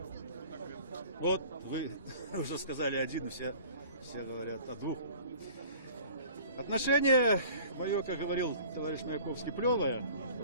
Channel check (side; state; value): both; inverted; correlation -0.47